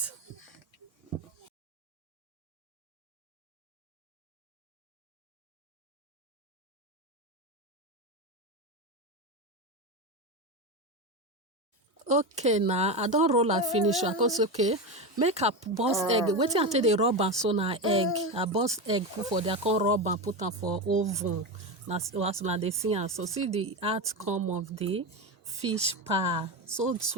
Okay now I don't roll and finish I cause okay make a burst egg wetin I take the rub am so na egg I burst egg put for there come rub and put am for oven na as una dey see am so see the outcome of the fish pie so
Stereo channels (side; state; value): both; normal; correlation 0.17